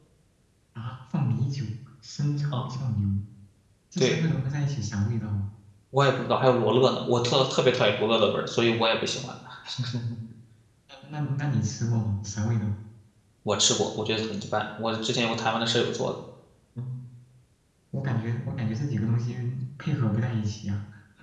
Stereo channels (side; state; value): both; identical; correlation 1.00